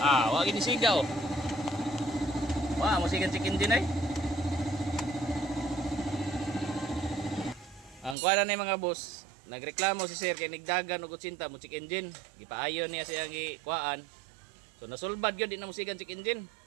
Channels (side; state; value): left; drops out; at 8.2 s